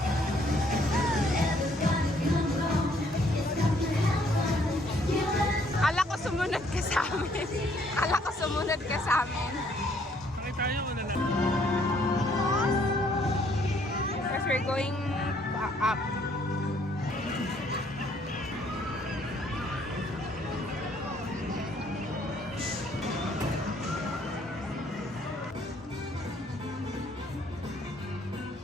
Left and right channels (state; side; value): normal; both; correlation 0.65